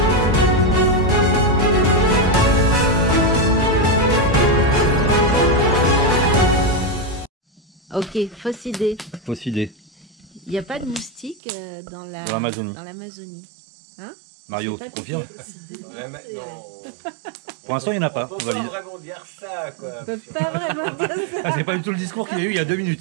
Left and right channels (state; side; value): drops out; left; at 11.4 s